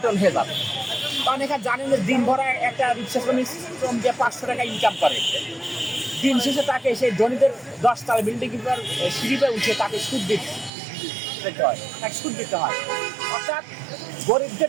হয়ে যাবে। কারণ এখানে জানেন যে দিন ভরা একটা রিক্সা শ্রম দিয়ে 500 টাকা ইনকাম করে, দিন শেষে তাকে সেই ধনীদের 10 তলা বিল্ডিং কিংবা সিঁড়িতে উঠে তাকে সুদ দিতে হয়। অর্থাৎ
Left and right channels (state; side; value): drops out; left; at 10.7 s